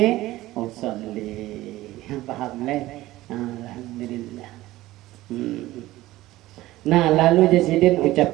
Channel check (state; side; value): quieter; left; 16.9 dB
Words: usolli. Paham leh? Alhamdulillah. Nah, lalu jasidin